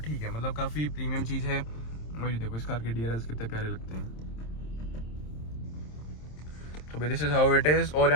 ठीक है, मतलब काफ़ी प्रीमियम चीज़ है। और ये देखो इस कार के DRLs कितने प्यारे लगते हैं। तो भाई this is how it is. और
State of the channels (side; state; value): right; late; 26 ms